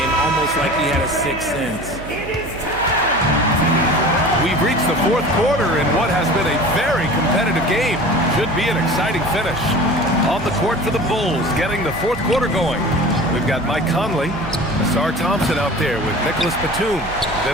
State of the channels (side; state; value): right; noise; hum, 14 dB below the sound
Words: almost like he had a sixth sense. We've reached the fourth quarter in what has been a very competitive game. Should be an exciting finish. On the court for the Bulls, getting the fourth quarter going. We've got Mike Conley, Ausar Thompson out there with Nicholas Batum.